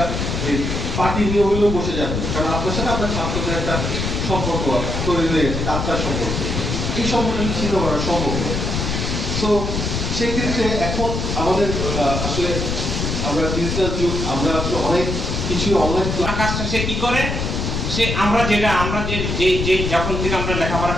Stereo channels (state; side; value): noise; left; rumble, 2 dB below the sound